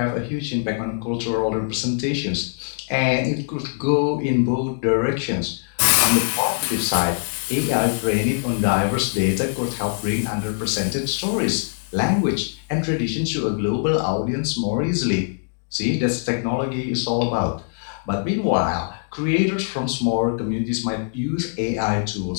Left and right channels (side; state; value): right; silent; digital silence